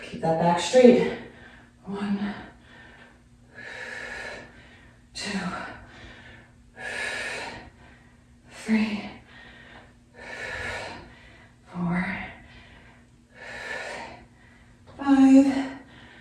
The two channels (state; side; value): identical; both; correlation 1.00